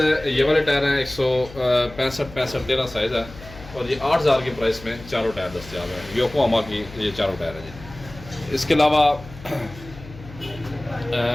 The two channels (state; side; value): noise; left; hum, 17 dB below the sound